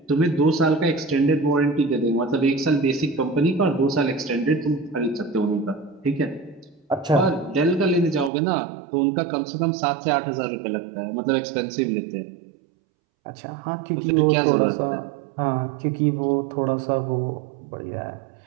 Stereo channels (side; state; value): left; drops out; at 8.3 s